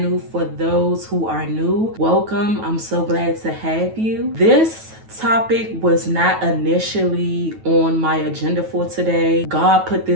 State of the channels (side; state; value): left; late; 9.2 ms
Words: For those who are new, welcome. I'm so glad to have you. This topic was not initially on my agenda for today. God put